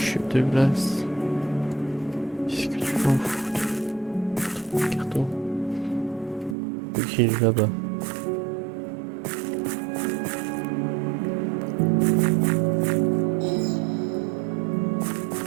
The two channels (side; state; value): left; drops out; at 6.6 s